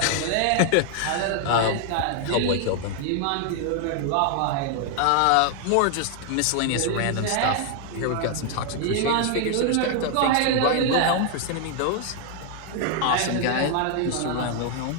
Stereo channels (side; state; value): both; different; correlation 0.00